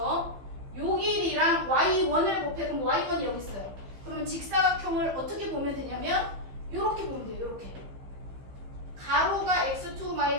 요 길이랑 y1을 곱해. 그럼 y1이 여기 있어요. 그러면 직사각형을 어떻게 보면 되냐면 요렇게 보면 돼요. 요렇게. 가로가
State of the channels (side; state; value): left; late; 15 ms